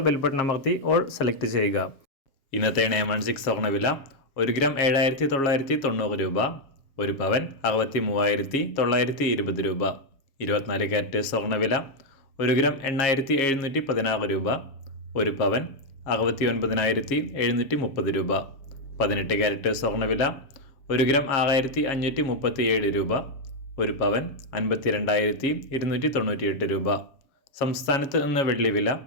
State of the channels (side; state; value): right; late; 7.3 ms